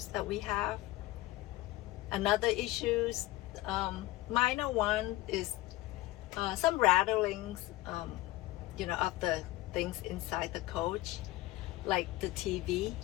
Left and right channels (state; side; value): quieter; right; 17.7 dB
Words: that we have. Another issues, minor one, is some rattlings, of the things inside the coach, like the TV.